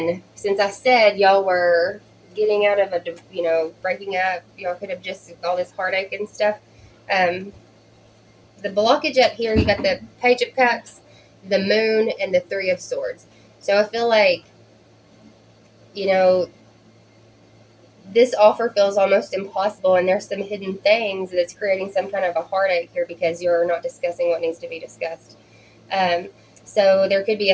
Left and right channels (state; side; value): identical; both; correlation 1.00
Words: since I said y'all were getting out of breaking up, y'all could have just all this heartache and stuff. The blockage up here, you got the Page of Cups, the Moon, and the Three of Swords. So I feel like you know, this offer feels almost impossible, and there's some hidden things that's creating some kind of a heartache here because you're not discussing what needs to be discussed. So there could be